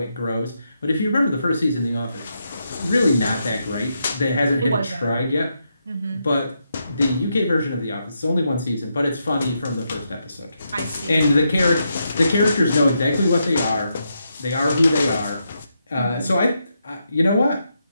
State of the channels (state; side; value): inverted; both; correlation -0.82